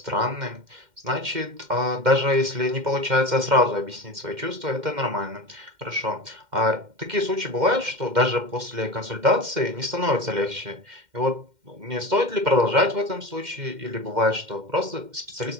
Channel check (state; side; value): late; left; 2.1 ms